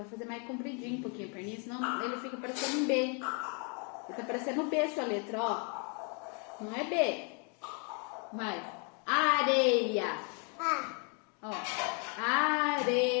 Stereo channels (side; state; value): right; quieter; 36.6 dB